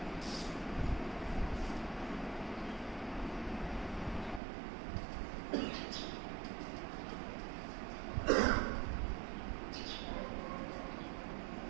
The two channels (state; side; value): drops out; left; at 4.4 s